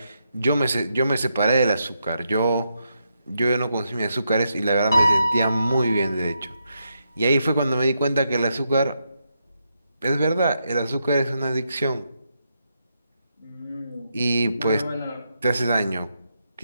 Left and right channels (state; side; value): inverted; both; correlation -0.82